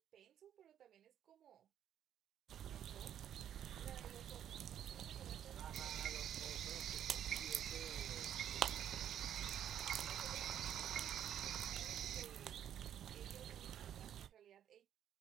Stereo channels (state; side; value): quieter; left; 10.1 dB